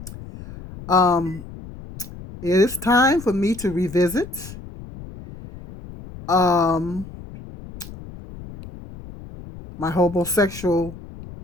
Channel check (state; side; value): noise; left; rumble, 15 dB below the sound